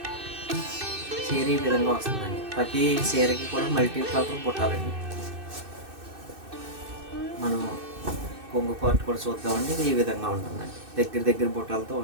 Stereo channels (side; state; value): left; late; 2.6 ms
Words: ఈ విధంగా వస్తుందండి. ప్రతి చీరకి కూడా మల్టీ కలర్ పుట్టాలండి. మనం కొంగు పార్ట్ కూడా చూద్దామండి. ఇది ఈ విధంగా ఉంటుందండి. దగ్గర బుట్టాలతో